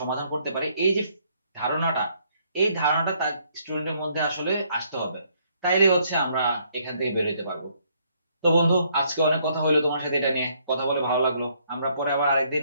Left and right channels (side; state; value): both; inverted; correlation -0.69